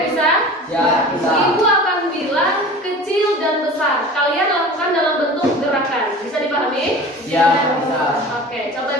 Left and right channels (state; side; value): normal; both; correlation 0.38